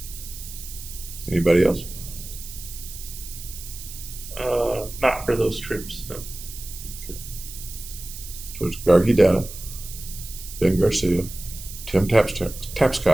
Anybody else? Not for those trips, no. Okay. So it's Gargi Data, Ben Garcia, Tim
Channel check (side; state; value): right; noise; hiss, 12 dB below the sound